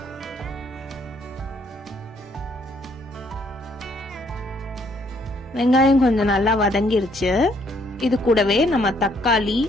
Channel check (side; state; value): both; normal; correlation 0.67